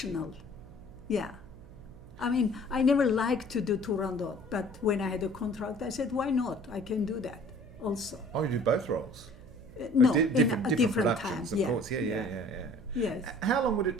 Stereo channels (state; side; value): noise; right; hum, 19 dB below the sound